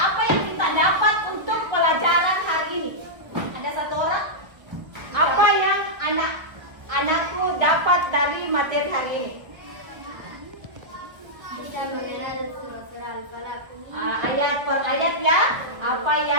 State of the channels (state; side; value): late; left; 1.6 ms